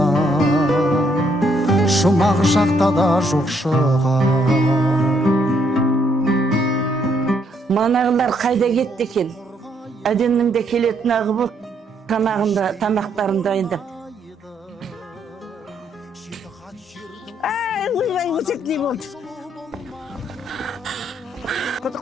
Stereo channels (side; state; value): both; normal; correlation 0.72